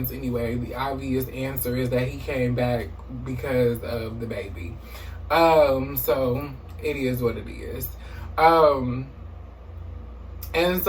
anyway, the obvious answer is that he came back because of the baby. So it is what it is. And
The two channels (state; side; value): identical; both; correlation 1.00